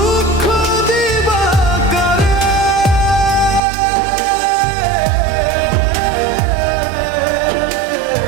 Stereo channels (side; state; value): left; drops out; at 3.6 s